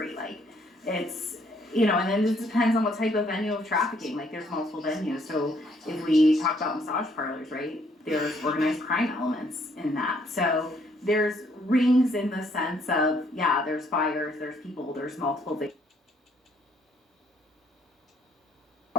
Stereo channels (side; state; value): both; normal; correlation 0.67